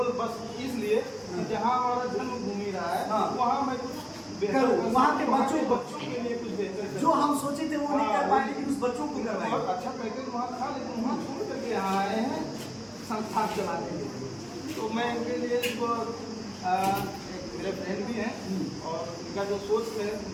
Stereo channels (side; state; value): both; identical; correlation 1.00